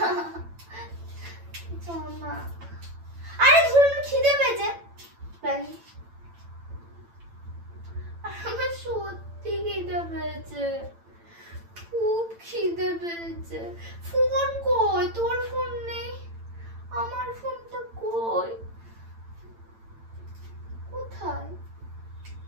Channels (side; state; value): left; late; 8.9 ms